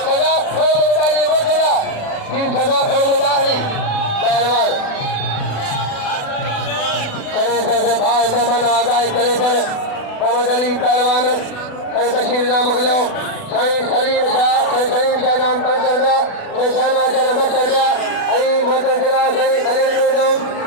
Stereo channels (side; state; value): right; late; 36 ms